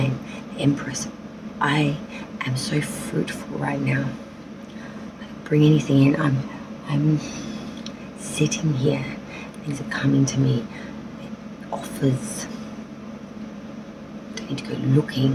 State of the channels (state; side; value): identical; both; correlation 1.00